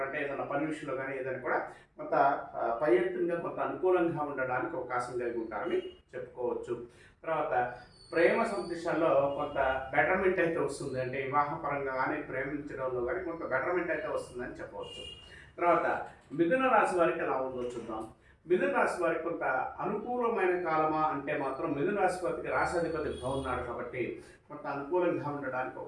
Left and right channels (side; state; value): both; identical; correlation 1.00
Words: అంటే ఏదైనా పని విషయంలో కానీ ఏదైనా కూడా కొంత పై ఎత్తుగా కొంత అనుకూలంగా ఉండడానికి అవకాశం కలిగి ఉంటారని చెప్పుకోవచ్చు. తర్వాత ప్రేమ సందేశాల్లో కొంత బెటర్మెంట్ అయితే వస్తుంది. అంటే వివాహపరంగా కానీ ప్రేమించడంలో కానీ కొంత బెటర్మెంట్ అయితే వస్తుందని చెప్పవచ్చు. తర్వాత మిథున రాశి వారికి ఎలా ఉందో చూద్దాం. మిథున రాశి వారికి కొంత అనుకూలమైన కాలమా అంటే మాత్రం మిథున రాశి వారికి రాశాధిపతి బాగున్నాడు కాబట్టి కొంత అనుకూలంగా ఉండడానికి